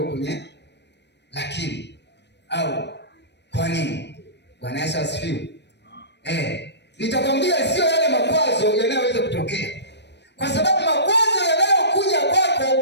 kwenye lakini au kwa nini. Bwana Yesu asifiwe. Nitakwambia sio yale makwazo yanayoweza kutokea, kwa sababu makwazo yanayokuja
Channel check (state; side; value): late; right; 0.50 ms